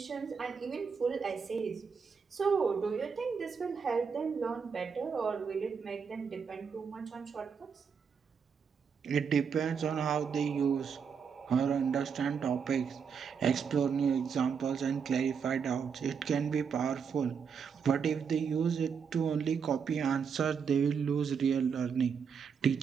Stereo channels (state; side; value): quieter; left; 6.4 dB